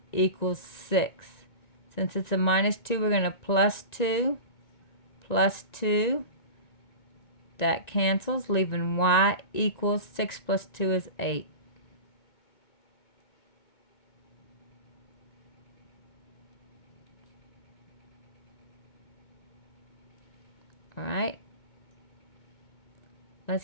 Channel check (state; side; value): late; right; 1.9 ms